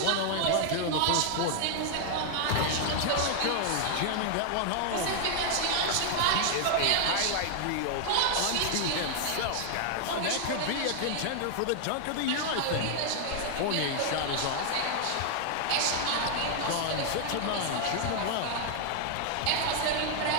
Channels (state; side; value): different; both; correlation 0.00